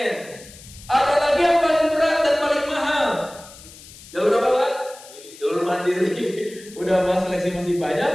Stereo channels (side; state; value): left; noise; hiss, 19 dB below the sound